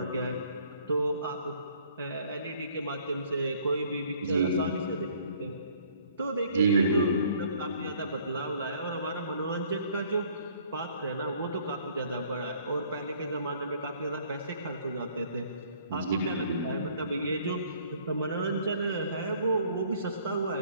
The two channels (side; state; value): both; inverted; correlation -0.59